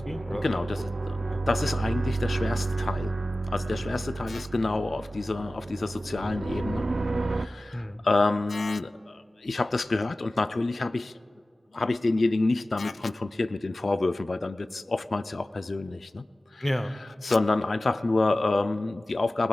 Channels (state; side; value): normal; both; correlation 0.96